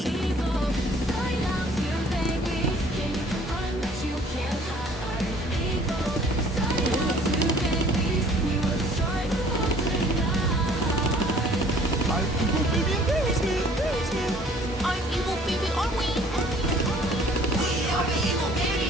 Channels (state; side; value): normal; both; correlation 0.55